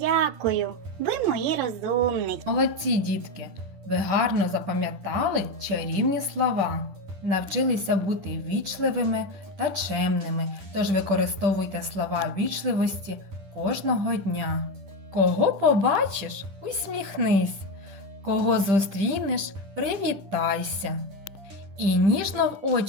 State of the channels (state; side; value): late; left; 10 ms